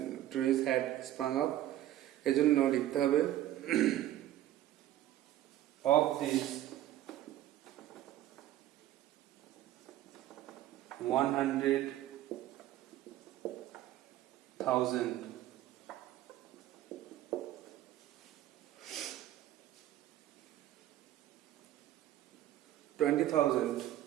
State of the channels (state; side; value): quieter; left; 13.4 dB